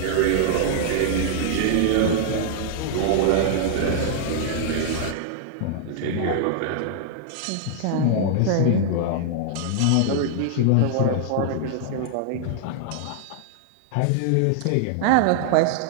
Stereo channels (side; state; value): both; different; correlation -0.01